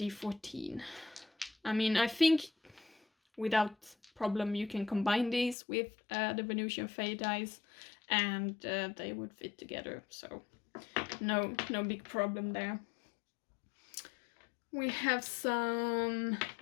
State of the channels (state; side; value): drops out; right; at 5.6 s